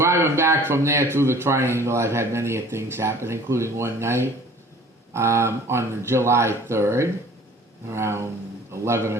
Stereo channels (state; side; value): normal; both; correlation 0.49